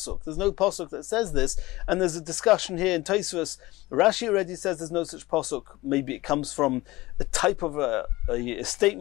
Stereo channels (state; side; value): quieter; right; 19.6 dB